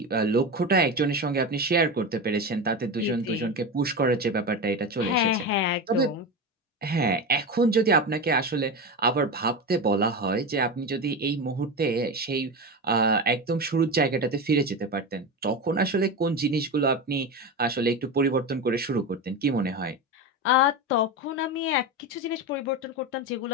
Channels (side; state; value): both; normal; correlation 0.21